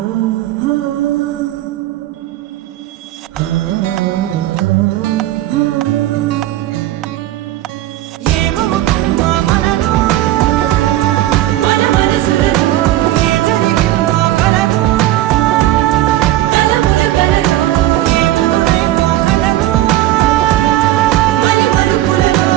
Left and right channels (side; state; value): left; quieter; 14.6 dB